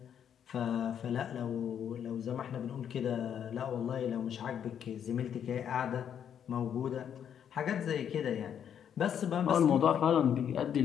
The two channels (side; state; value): right; quieter; 8.8 dB